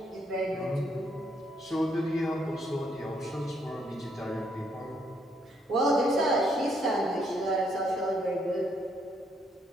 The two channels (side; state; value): both; normal; correlation 0.72